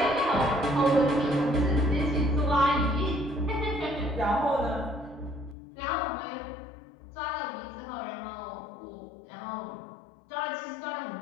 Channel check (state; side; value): drops out; right; at 5.6 s